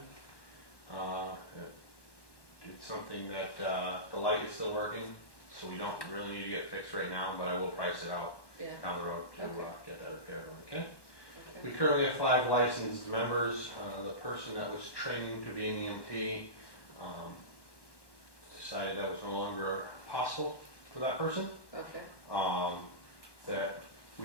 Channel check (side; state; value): right; late; 1.1 ms